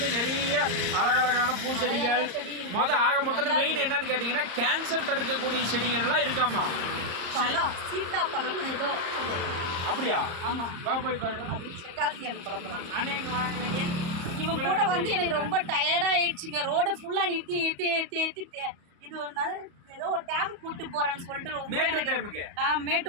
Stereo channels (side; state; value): left; late; 34 ms